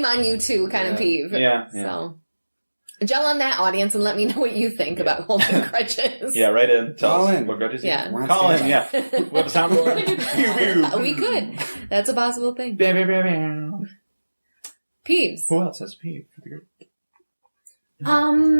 on you too kind of peeve. yeah. So, gel on that, audience, and let me know what you think about holding grudges. Yeah, right in. Tell Call us in. what grudges you Yeah. have. Once Call in, again. yeah. We have a soundboard. Pew, pew. We could. That's a possible thing. Bam, bam, bam, bam. Peeves. Who else has peeve?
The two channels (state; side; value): inverted; both; correlation -1.00